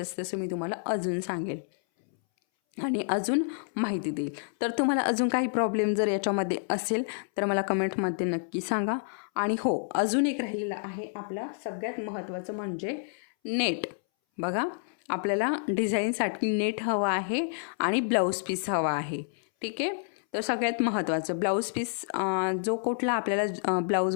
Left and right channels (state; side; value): silent; right; 59 dB below the other